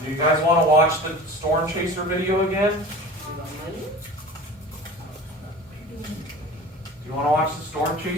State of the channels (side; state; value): both; normal; correlation 0.38